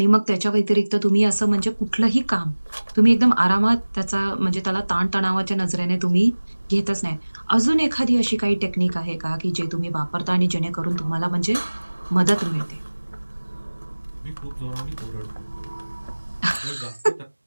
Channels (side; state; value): both; inverted; correlation -1.00